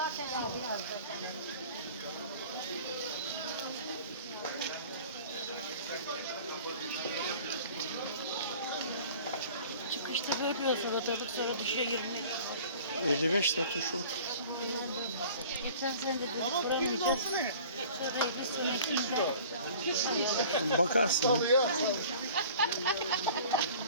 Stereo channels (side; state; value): both; inverted; correlation -0.46